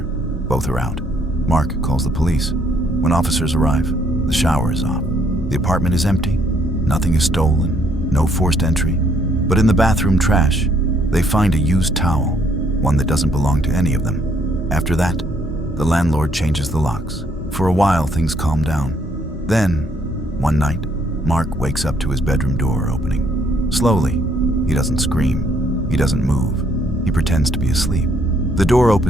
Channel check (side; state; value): both; normal; correlation 0.68